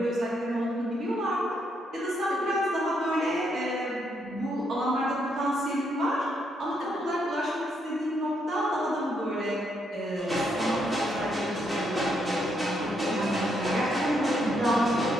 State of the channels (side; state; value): both; normal; correlation 0.76